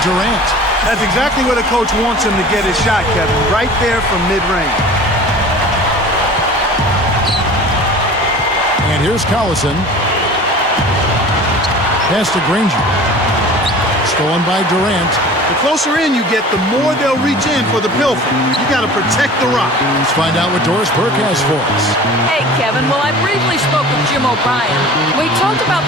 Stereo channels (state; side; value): normal; both; correlation 0.41